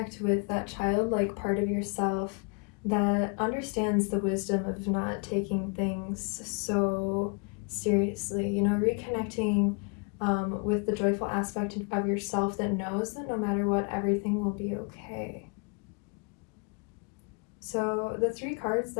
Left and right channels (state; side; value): quieter; right; 35.1 dB